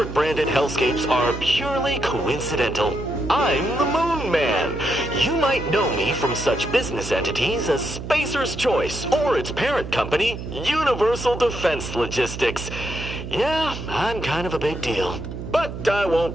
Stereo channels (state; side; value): noise; right; hum, 8 dB below the sound